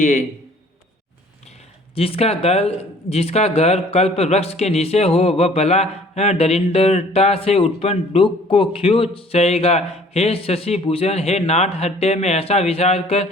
जिसका घर कल्प वृक्ष के नीचे हो वह भला दरिद्रता से उत्पन्न दुख को क्यों सहेगा। हे शशि भूषण, हे नाथ, हृदय में ऐसा विचार कर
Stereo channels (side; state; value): both; normal; correlation 0.54